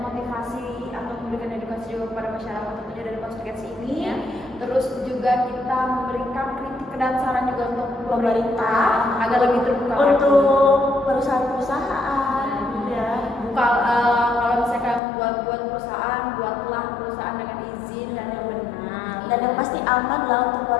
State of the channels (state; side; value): drops out; right; at 15.0 s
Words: atau memberikan edukasi juga kepada masyarakat tentunya dari podcast ini. Ya. Terus juga kita memberikan kritik dan saran juga untuk Pemerintah. agar lebih terbuka Untuk perusahaan-perusahaan. Ya. kalau misalkan buat perusahaan, buatlah perusahaan dengan izin dan yang benar. Dan yang pasti aman lah untuk